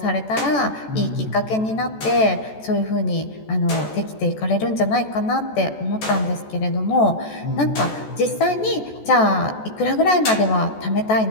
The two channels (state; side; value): late; right; 14 ms